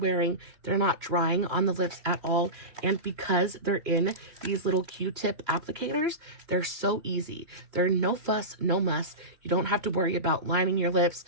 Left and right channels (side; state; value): left; late; 2.9 ms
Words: They're not drying on the lips at all. And because they're in these little Q-tip applicators, they're so easy. They're no fuss, no muss. You don't have to worry about lining your lips.